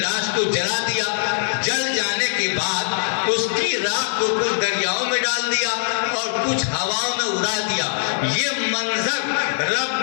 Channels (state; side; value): silent; right; digital silence